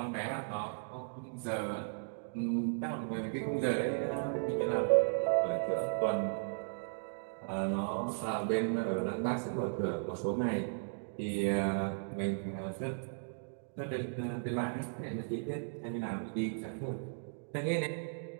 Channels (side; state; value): left; silent; digital silence